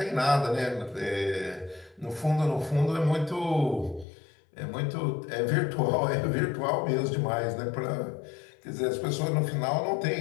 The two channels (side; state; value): right; drops out; at 4.0 s